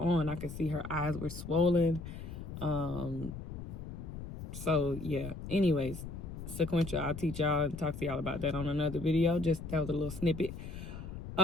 I could see her eyes were swollen. So, yeah. Anyways, sequential, I'll teach y'all and talk to y'all about that on another video. Just that was a little snippet.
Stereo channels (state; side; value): noise; left; rumble, 9 dB below the sound